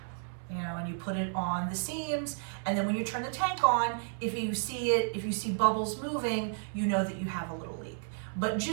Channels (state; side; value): silent; left; 56 dB below the other